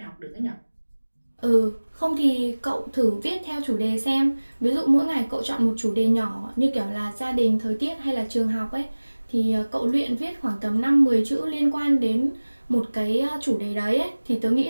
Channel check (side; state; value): both; inverted; correlation -1.00